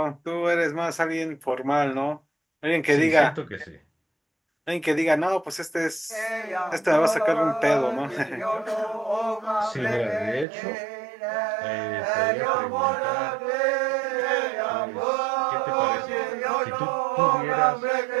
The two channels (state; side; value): drops out; left; at 10.5 s